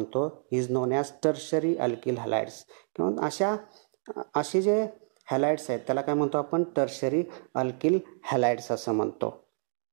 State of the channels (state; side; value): silent; left; digital silence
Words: Is known as tertiary alkyl halides. किंवा असे जे हॅलाइड्स आहेत त्याला काय म्हणतो आपण टर्शरी अल्किल हॅलाइड्स असं म्हणतो.